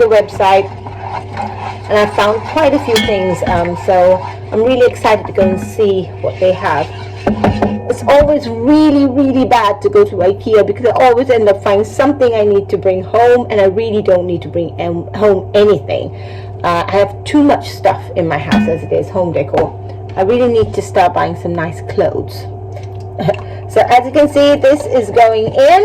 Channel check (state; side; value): identical; both; correlation 1.00